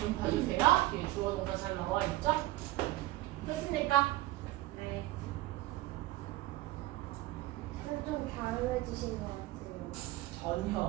봐주세요. 뒤에 주어 동사 잘 나와 있죠? 됐습니까? 네. 좀 다르해지신 것 같아요.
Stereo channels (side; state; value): left; quieter; 17.7 dB